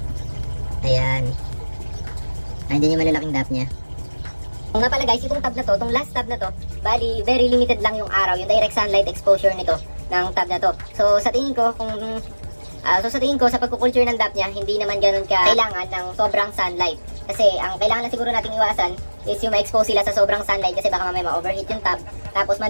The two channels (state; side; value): inverted; both; correlation -1.00